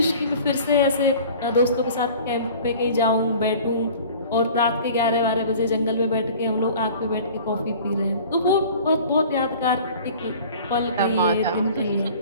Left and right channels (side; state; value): both; inverted; correlation -0.45